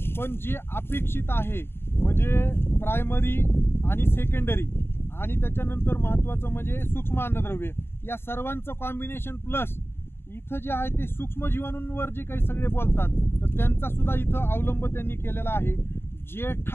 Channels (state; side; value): late; right; 0.11 ms